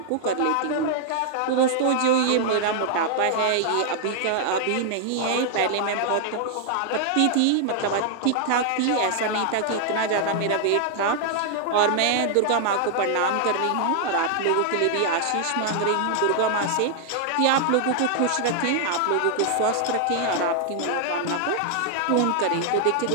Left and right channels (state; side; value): different; both; correlation 0.00